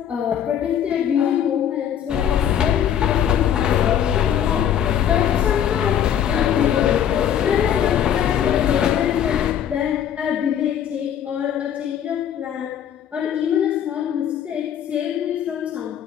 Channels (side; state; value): right; quieter; 9.6 dB